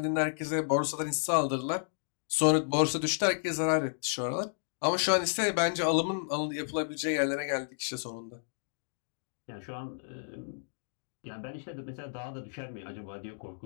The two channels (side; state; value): right; silent; digital silence